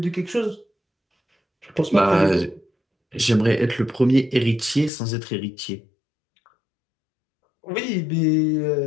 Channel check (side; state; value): right; drops out; at 4.9 s